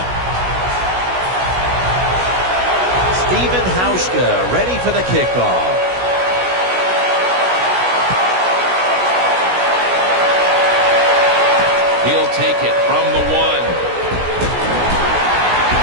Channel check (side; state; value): left; late; 16 ms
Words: Steven Hauschka ready for the kickoff. He'll take it from the 1.